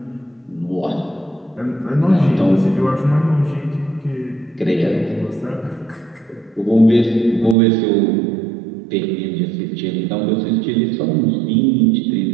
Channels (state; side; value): drops out; left; at 7.6 s